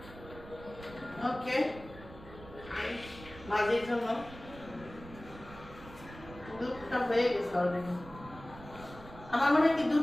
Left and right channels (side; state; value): right; noise; rumble, 16 dB below the sound